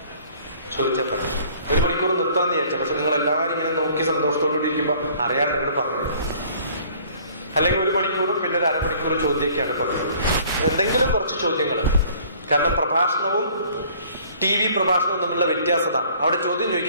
ചോദിച്ചാൽ പറയാം. 1 മണിക്കൂർ നിർത്താമെന്ന് വിചാരിച്ചാൽ, പക്ഷെ നിങ്ങൾ എല്ലാവരും ഇങ്ങനെ നോക്കി സന്തോഷത്തോടുകൂടി ഇരിക്കുമ്പോൾ അറിയാൻ നിങ്ങൾ പറഞ്ഞു. അല്ലെങ്കിൽ 1 മണിക്കൂറും പിന്നെ ഒരു അരമണിക്കൂർ ചോദ്യമൊക്കെയാണ് പറയുന്നത്. എന്തെങ്കിലും കുറച്ച് ചോദ്യങ്ങൾ. കാരണം പ്രഭാഷണവും TV പ്രഭാഷണവും തമ്മിലുള്ള വ്യത്യാസതാണ്. അവിടെ ചോദ്യം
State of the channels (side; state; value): both; inverted; correlation -0.55